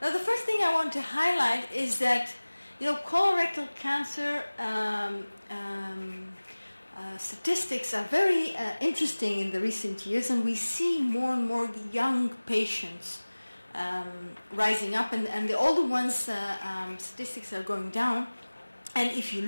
Now, the first thing I want to highlight is that, colorectal cancer statistics are very interesting in the recent years, and we see more and more young patients rising up, and the older ones, statistics are going down. And if you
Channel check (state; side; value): inverted; both; correlation -1.00